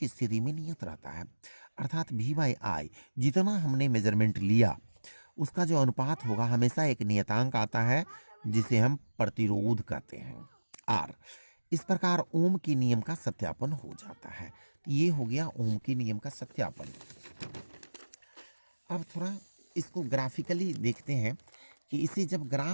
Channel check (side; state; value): both; inverted; correlation -1.00